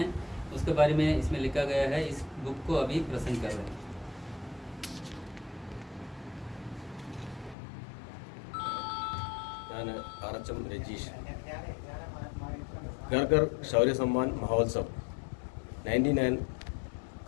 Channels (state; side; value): drops out; right; at 7.6 s